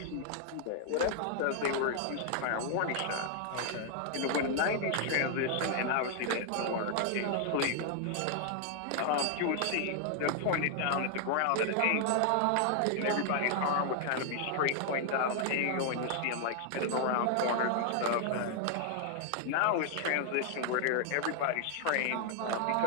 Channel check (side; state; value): both; different; correlation 0.00